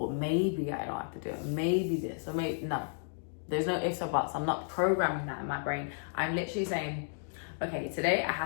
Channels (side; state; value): right; silent; digital silence